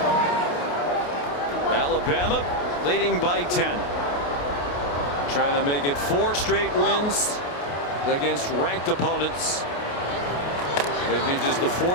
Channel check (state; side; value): late; right; 28 ms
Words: Alabama leading by 10. Trying to make it 4 straight wins against ranked opponents. They'd be just the